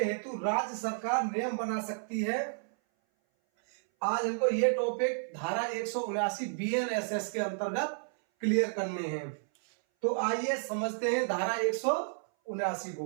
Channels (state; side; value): silent; left; 57 dB below the other